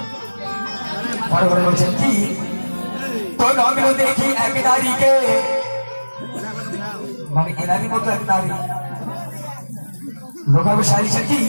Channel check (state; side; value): inverted; both; correlation -1.00